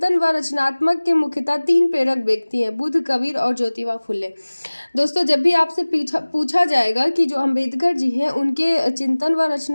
व रचनात्मक के मुख्यतः 3 प्रेरक व्यक्ति हैं: बुद्ध, कबीर और ज्योतिबा फुले। दोस्तों जब भी आपसे पूछा जाएगा कि जो अम्बेडकर जी हैं उनके चिंतन व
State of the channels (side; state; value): both; inverted; correlation -1.00